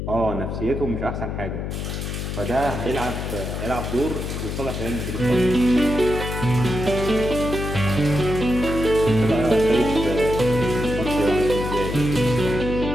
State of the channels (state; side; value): noise; left; hum, 4 dB below the sound